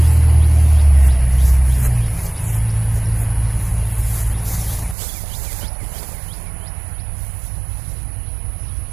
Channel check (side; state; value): left; drops out; at 5.0 s